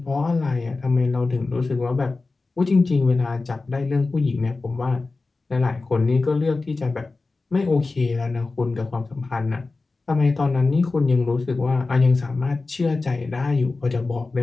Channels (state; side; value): quieter; right; 3.7 dB